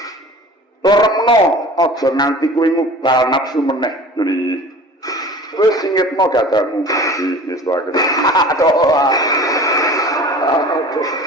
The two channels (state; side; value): normal; both; correlation 0.42